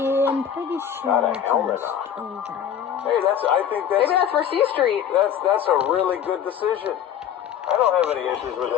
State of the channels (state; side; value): quieter; right; 9.2 dB